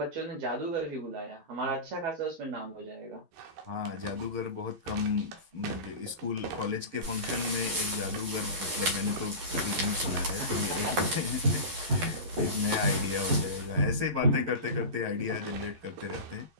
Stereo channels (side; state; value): left; late; 12 ms